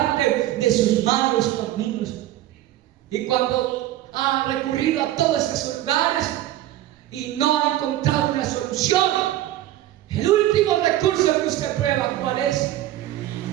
de sus malos caminos. Y cuando ha recurrido a todos esos lugares y no ha encontrado una solución, el último recurso que usted prueba, ¿cuál es?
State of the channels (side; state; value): left; quieter; 14.0 dB